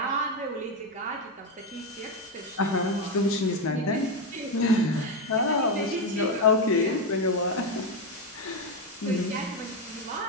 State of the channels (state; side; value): normal; both; correlation 0.09